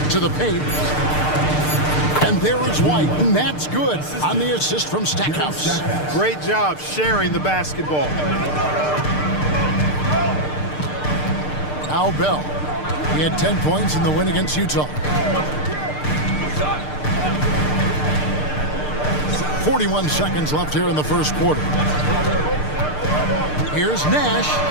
To the paint. And there is White, and that's good on the assist from Stackhouse. Great job sharing the basketball. Now Bell. He had 10 points in the win against Utah. 41 seconds left here in the first quarter. Here's Nash.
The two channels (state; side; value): late; right; 6.7 ms